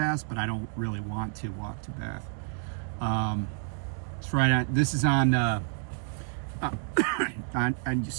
but I don't really want to walk to Bath. It's right on, this is on, on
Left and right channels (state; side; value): silent; left; 58 dB below the other